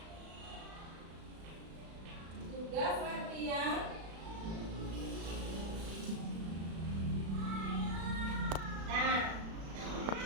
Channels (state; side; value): late; left; 36 ms